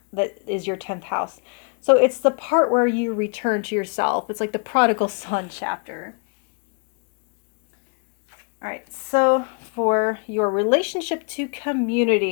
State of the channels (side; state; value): right; quieter; 38.3 dB